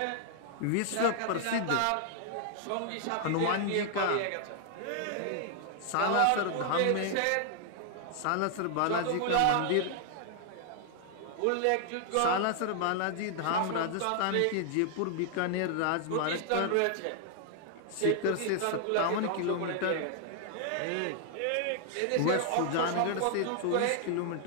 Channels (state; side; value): different; both; correlation 0.00